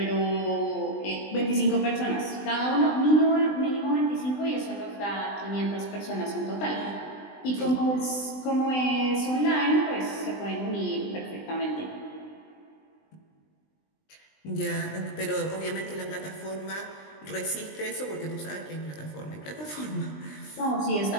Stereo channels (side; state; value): right; late; 20 ms